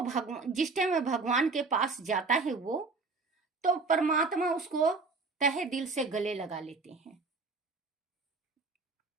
भगवान जिस टाइम में भगवान के पास जाता है वो तो परमात्मा उसको तहे दिल से गले लगा लेते हैं।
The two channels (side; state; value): left; quieter; 4.0 dB